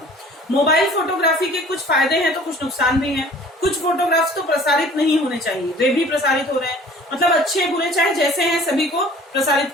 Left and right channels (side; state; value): both; normal; correlation 0.49